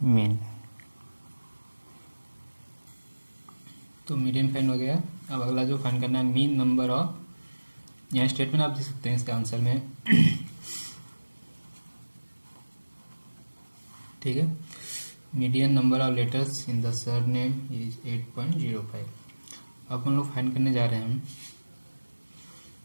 मीन। तो मीडियन फाइंड हो गया। अब अगला जो फाइंड करना है मीन नंबर ऑफ, यहाँ स्टेटमेंट आप दे सकते हैं इसका आंसर में, ठीक है। Median number of letters in the surname is 8.05। अब हम लोग फाइंड करने जा रहे हैं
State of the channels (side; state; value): both; inverted; correlation -1.00